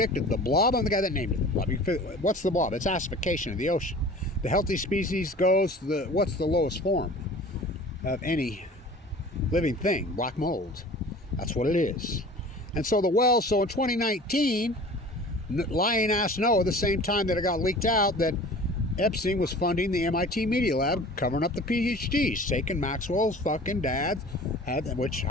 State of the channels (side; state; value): both; normal; correlation 0.43